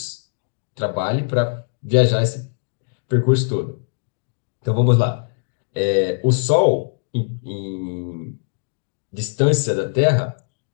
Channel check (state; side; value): silent; right; digital silence